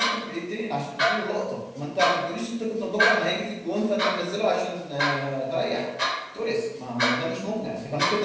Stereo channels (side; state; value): both; identical; correlation 1.00